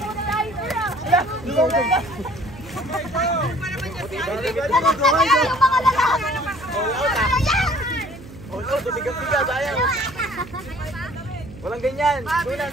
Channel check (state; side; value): noise; right; hum, 17 dB below the sound